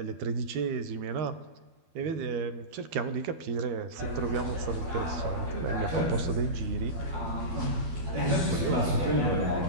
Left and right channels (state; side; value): late; left; 12 ms